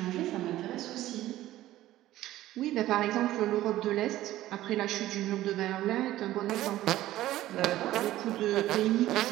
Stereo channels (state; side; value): quieter; left; 14.9 dB